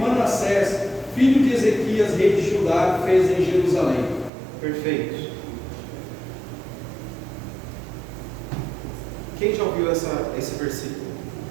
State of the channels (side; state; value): left; drops out; at 4.3 s